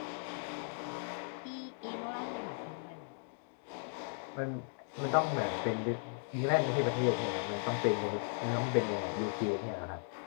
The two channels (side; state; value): right; silent; 53 dB below the other